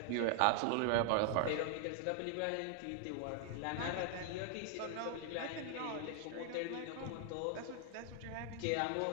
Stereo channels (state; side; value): different; both; correlation 0.00